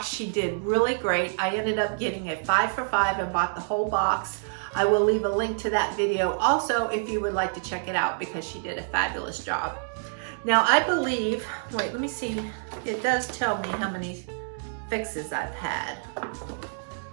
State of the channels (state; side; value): silent; left; digital silence